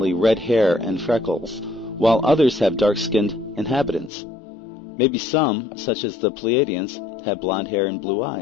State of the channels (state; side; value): drops out; right; at 4.1 s